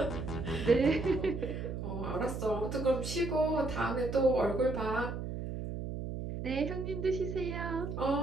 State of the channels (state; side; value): noise; right; hum, 5 dB below the sound